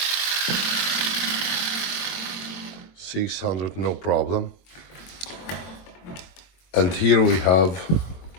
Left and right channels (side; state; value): right; late; 22 ms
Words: $600, no problem. And here we have